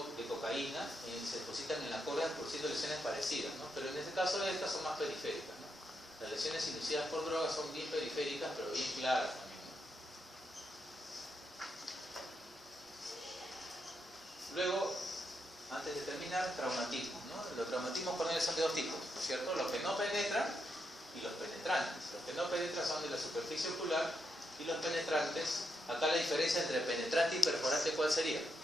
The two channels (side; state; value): both; normal; correlation 0.82